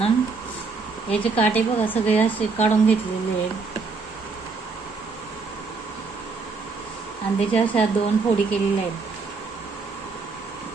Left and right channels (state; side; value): quieter; left; 4.4 dB